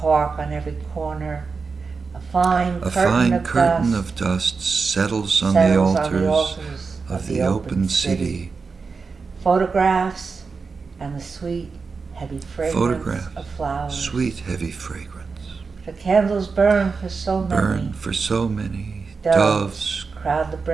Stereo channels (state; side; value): quieter; left; 4.8 dB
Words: on every corner, a fine curtain of dust settles on the altars of the open city. Photographs and the sweet, heavy fragrance of flowers. Sweet, heavy fragrance. The candles burn for so many. Burn for so many. Doves crowd the